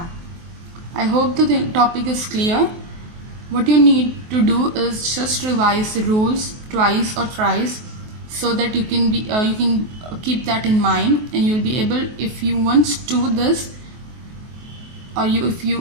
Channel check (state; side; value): late; left; 23 ms